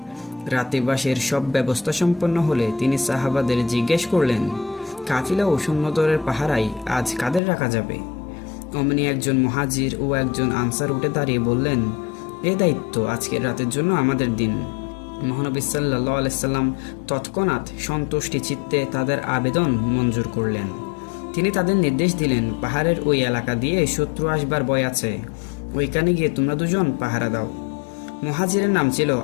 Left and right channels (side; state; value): right; drops out; at 7.4 s